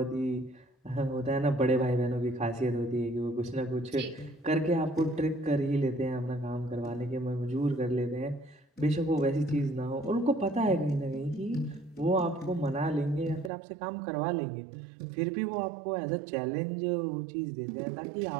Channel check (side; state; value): left; drops out; at 13.5 s